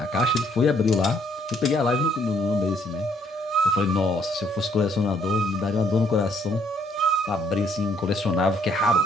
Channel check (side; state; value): both; normal; correlation 0.67